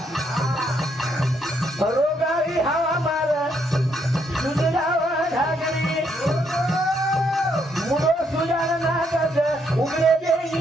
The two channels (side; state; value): both; normal; correlation 0.74